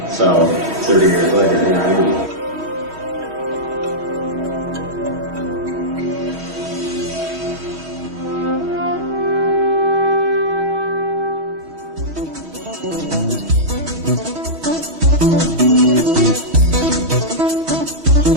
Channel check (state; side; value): late; left; 3.1 ms